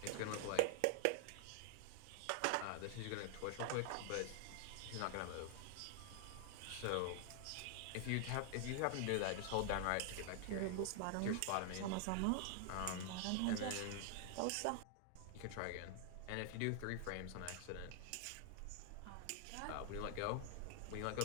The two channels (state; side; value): different; both; correlation 0.00